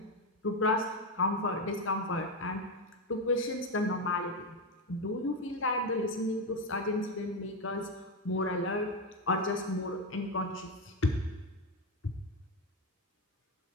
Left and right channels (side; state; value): both; normal; correlation 0.11